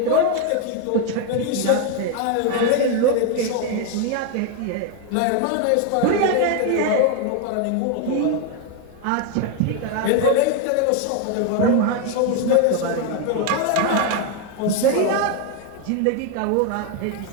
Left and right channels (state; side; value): different; both; correlation 0.01